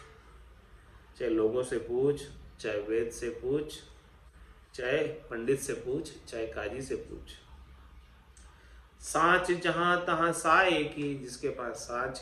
चाहे लोगों से पूछ, चाहे वेद से पूछ, चाहे पंडित से पूछ, चाहे काजी से पूछ। साच जहां तहां साए की, जिसके पास साच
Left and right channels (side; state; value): both; identical; correlation 1.00